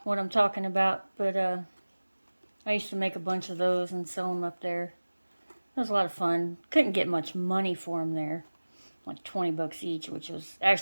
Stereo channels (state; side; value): inverted; both; correlation -1.00